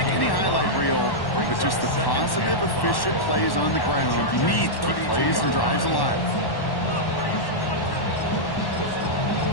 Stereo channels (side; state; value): right; late; 1.1 ms